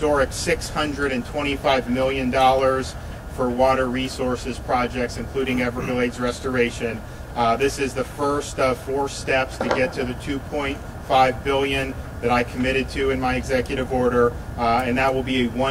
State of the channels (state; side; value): identical; both; correlation 1.00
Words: $625 million for water resources projects, including Everglades restoration. This is the first of 4 steps to get to the $2.5 billion that I committed to in my executive order, and that will be a